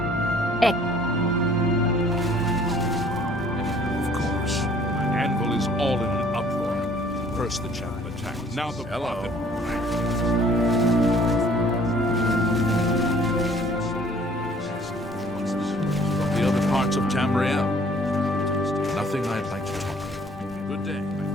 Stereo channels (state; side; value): normal; both; correlation 0.56